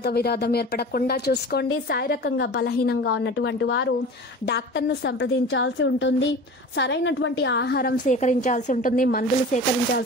విరోధం ఏర్పడకుండా చూసుకోండి. శారీరకంగా బలహీనంగా ఉన్నటువంటి వారు డాక్టర్ను సంప్రదించాల్సి ఉంటుంది. సరైనటువంటి ఆహారం సేకరించాల్సి ఉంటుంది. మందులు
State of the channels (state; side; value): normal; both; correlation 0.36